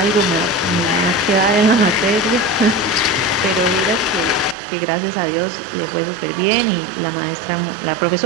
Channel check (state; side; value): drops out; left; at 4.5 s